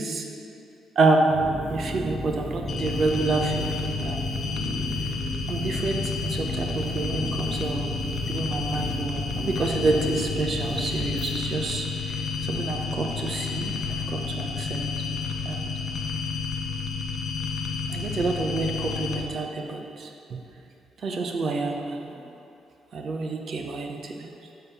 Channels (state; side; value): normal; both; correlation 0.72